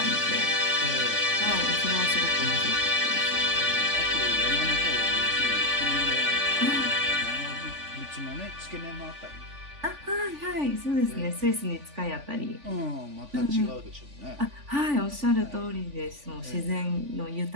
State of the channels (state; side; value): late; left; 3.5 ms